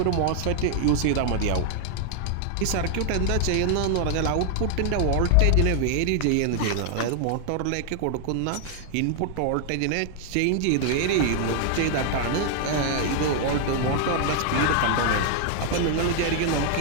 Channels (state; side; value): different; both; correlation 0.00